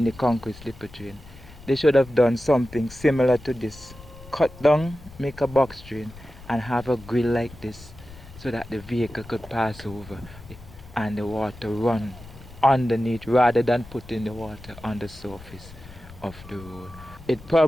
the concrete slipper drain. They should have done something similar to this. Cut down, make a box drain, and have a grill like this, so that the vehicle could pass over and the water run underneath, rather than putting the water on the surface of the road. It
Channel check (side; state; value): left; noise; rumble, 18 dB below the sound